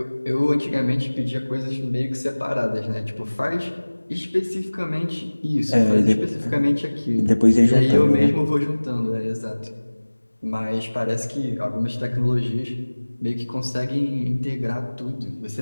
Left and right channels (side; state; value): both; inverted; correlation -1.00